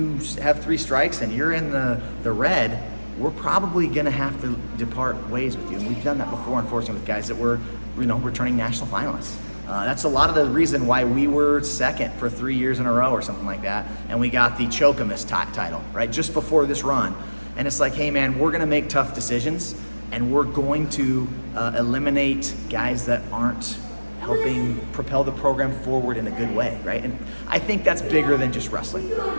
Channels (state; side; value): inverted; both; correlation -1.00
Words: have 3 strikes and you're in the red, we're probably going to have to depart ways with you. And we've done that before, unfortunately, with guys that were, returning national finalists. That's a lot of the reason why we were second for 3 years in a row or something like that, and we got the Chokamus title, right, just before this run. And it's like, hey man, we're gonna make tough decisions, and we're going to eliminate guys that aren't helping propel the program forward in a good way, right? And I think that's bigger than just wrestling.